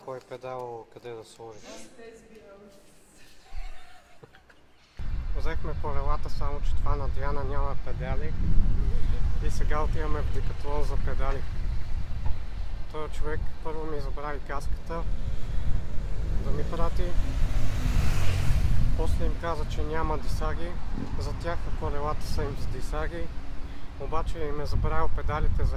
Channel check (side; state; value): both; identical; correlation 1.00